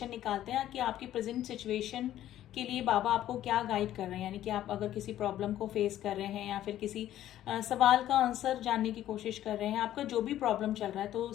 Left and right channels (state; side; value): quieter; right; 12.6 dB